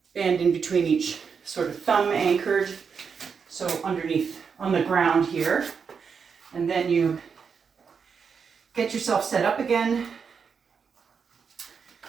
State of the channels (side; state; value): left; quieter; 6.1 dB